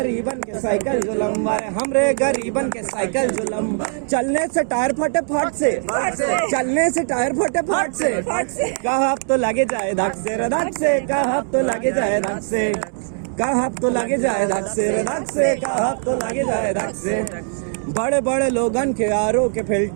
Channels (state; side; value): silent; left; 65 dB below the other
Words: के साइकिल जो लंबा रे, हमरे गरीबन के साइकिल जो लंबा। चलने से टायर फटे फट से, चलने से टायर फटे फट से, कहब तो लगे जाए धक से रे धक से, कहब तो लगे जाए धक से, कहब तो लगे जाए धक से रे धक से, कहब तो लगे जाए धक से। बड़े बड़े लोगन के आरो के